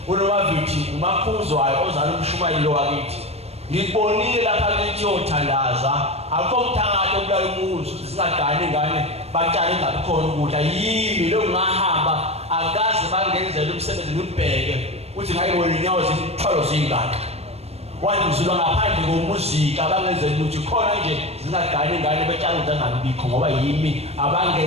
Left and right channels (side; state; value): left; late; 0.30 ms